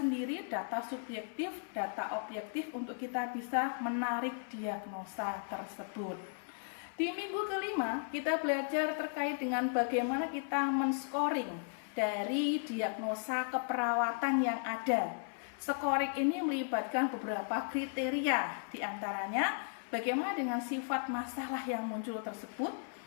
data subjektif, data objektif untuk kita bisa menarik diagnosa tersebut. Di minggu kelima kita belajar terkait dengan bagaimana kita men-scoring dari diagnosa keperawatan yang ada. Scoring ini melibatkan beberapa kriteria, diantaranya bagaimana dengan sifat masalah yang muncul tersebut,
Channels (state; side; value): silent; right; 54 dB below the other